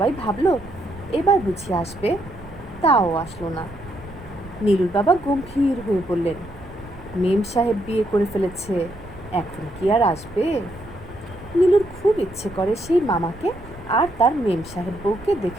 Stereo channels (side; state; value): right; noise; rumble, 18 dB below the sound